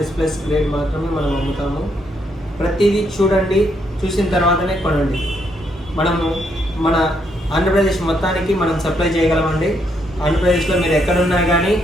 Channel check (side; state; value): both; normal; correlation 0.75